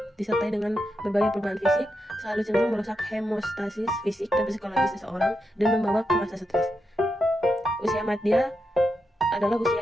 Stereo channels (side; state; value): both; normal; correlation 0.85